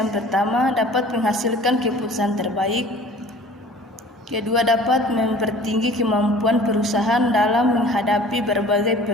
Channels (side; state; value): both; normal; correlation 0.47